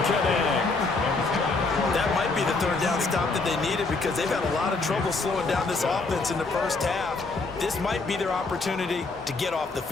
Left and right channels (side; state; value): right; quieter; 3.7 dB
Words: connect. That might be the 3rd down stop that they needed because they've had a lot of trouble slowing down this offense in the first half. This might be their opportunity to get off the